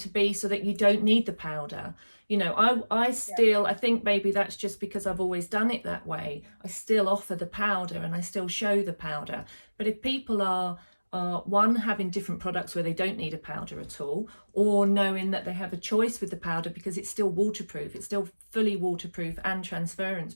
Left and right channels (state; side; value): inverted; both; correlation -1.00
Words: be so that you don't need the powder. You know, I still, I think maybe that's just because I've always done it that way. I still offer the powder and I still show the powder. But if people are one, having different products where they don't need a powder at all, or knowing that they have a choice with the powder because it's still waterproof, it's still fully waterproof and transference